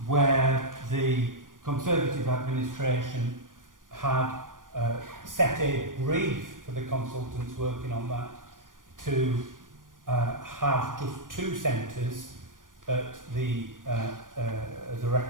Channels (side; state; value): left; late; 0.89 ms